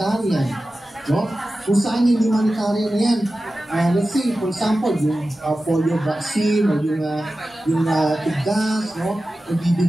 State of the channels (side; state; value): both; normal; correlation 0.94